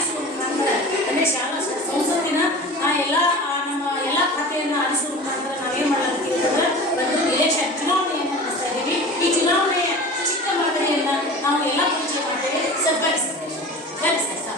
ಮುಖಾಂತರ ಅಂದರೆ ಶಾಲಾ ಸಂಸತ್ತಿನ ಎಲ್ಲ ನಮ್ಮ ಎಲ್ಲ ಖಾತೆಯನ್ನು ಆರಿಸುವ ಮುಖಾಂತರ ನಾವೇನು ಮಾಡಲಾಗ್ತೀವಿ ಅಂತಂದ್ರೆ ಒಂದು ಎಲೆಕ್ಷನ್ ಚುನಾವಣೆಯನ್ನು ನಡೆಸ್ತಾ ಇದ್ದೀವಿ. ಈ ಚುನಾವಣೆಯ ಚಿಕ್ಕ ಮಾದರಿಯನ್ನು ನಾವು ಎಲ್ಲ ಪರಿಚಯ ಮಾಡ್ತೇವೆ. ಸರ್ ಬರ್ರಿ ಸರ್, ಬರ್ರಿ ಸರ್,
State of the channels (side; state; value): both; normal; correlation 0.37